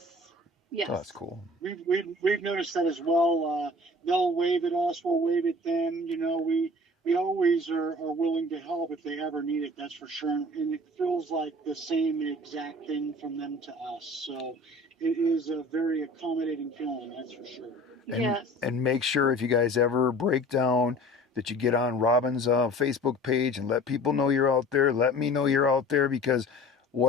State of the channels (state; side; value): normal; both; correlation 0.44